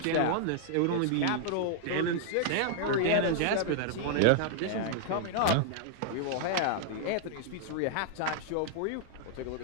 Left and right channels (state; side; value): different; both; correlation -0.01